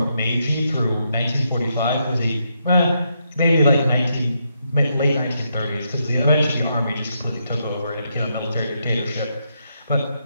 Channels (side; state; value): both; inverted; correlation -0.79